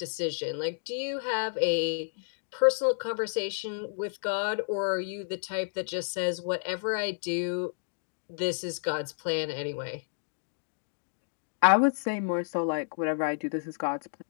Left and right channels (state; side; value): silent; right; digital silence